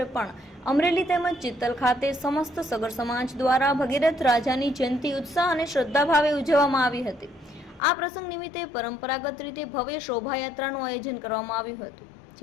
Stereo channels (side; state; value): right; drops out; at 7.8 s